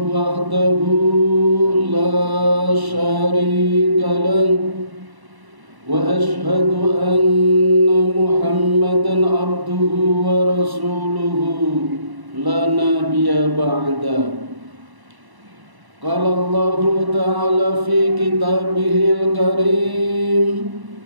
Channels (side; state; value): left; late; 1.0 ms